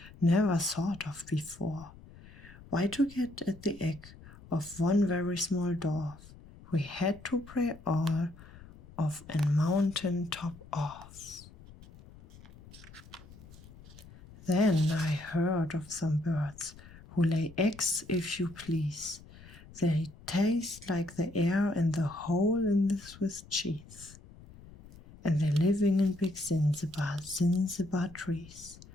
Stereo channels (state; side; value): noise; left; rumble, 20 dB below the sound